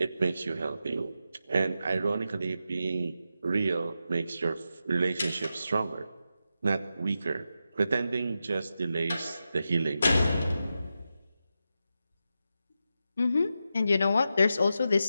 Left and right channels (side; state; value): both; inverted; correlation -0.89